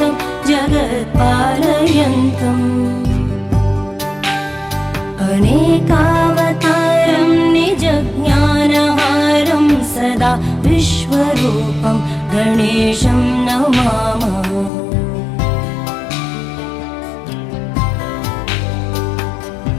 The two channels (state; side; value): drops out; right; at 14.7 s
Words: जगत्पालयन्तम् अनेकावतारं निजज्ञानहारं सदा विश्वरूपं गणेशं नमामः